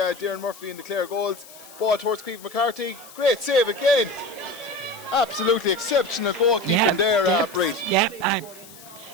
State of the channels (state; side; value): noise; left; hiss, 19 dB below the sound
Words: Darren Murphy in the Clare goals. Ball towards Cleve McCarthy, great save again. Absolutely exceptional goalkeeping there, Breed.